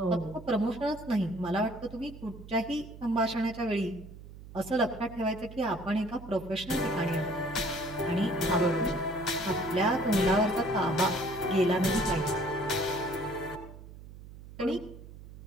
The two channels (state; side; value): noise; right; hum, 16 dB below the sound